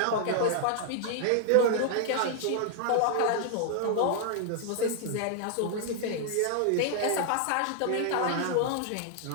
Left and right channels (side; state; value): both; different; correlation 0.00